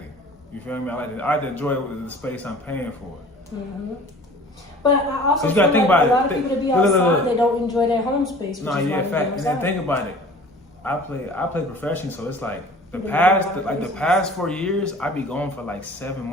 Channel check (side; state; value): both; normal; correlation 0.46